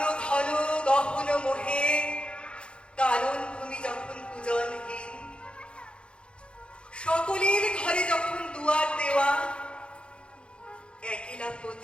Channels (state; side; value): late; right; 0.056 ms